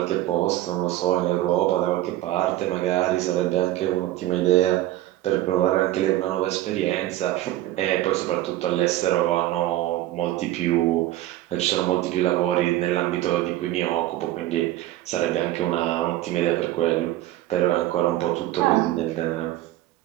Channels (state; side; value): quieter; left; 14.9 dB